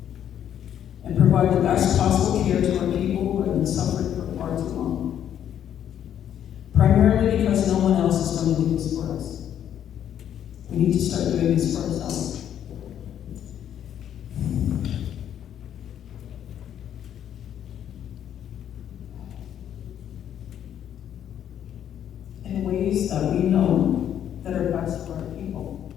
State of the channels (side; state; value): right; quieter; 9.9 dB